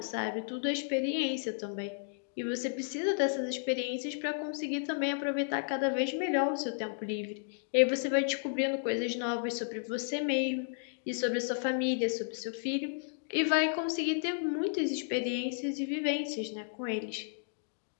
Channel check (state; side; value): silent; right; digital silence